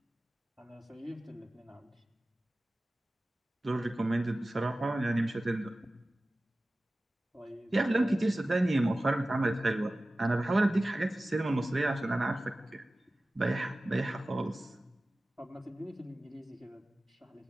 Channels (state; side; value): normal; both; correlation 0.96